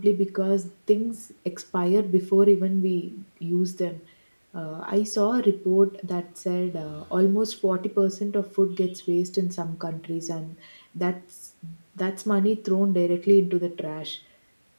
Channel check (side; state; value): both; inverted; correlation -1.00